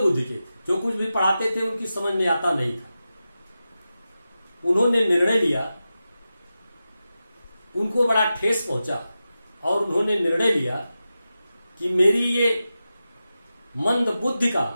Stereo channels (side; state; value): both; inverted; correlation -0.92